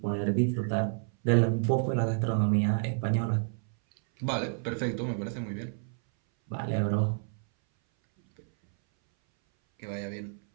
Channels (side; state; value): left; silent; 58 dB below the other